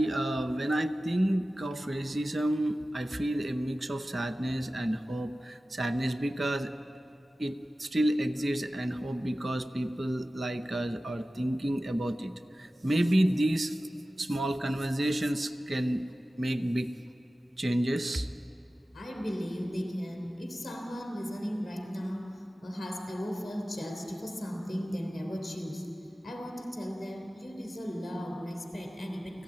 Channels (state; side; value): normal; both; correlation 0.96